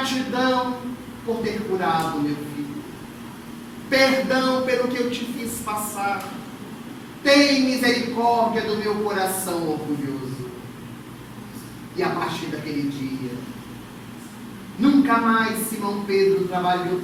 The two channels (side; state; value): both; identical; correlation 1.00